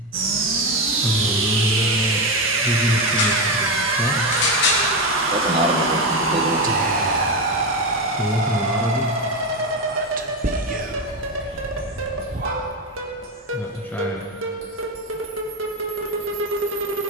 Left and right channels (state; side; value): normal; both; correlation 0.13